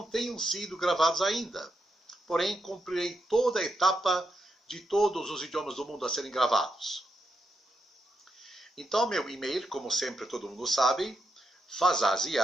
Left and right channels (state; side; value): normal; both; correlation 0.84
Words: tenham sido gravados ainda. Porém, cumprirei toda a etapa de todos os idiomas do mundo a serem gravados. Então, meu e-mail, como sempre todo mundo sabe,